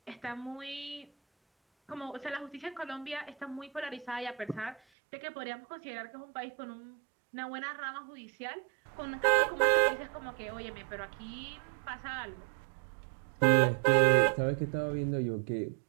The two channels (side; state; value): left; drops out; at 4.8 s